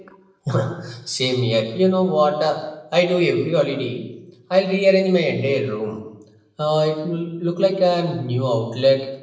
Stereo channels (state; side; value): identical; both; correlation 1.00